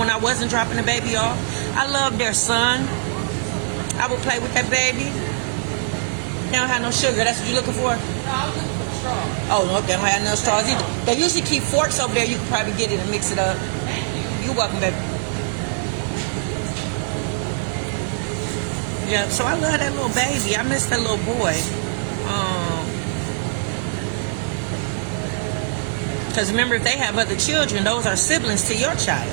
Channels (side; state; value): left; silent; digital silence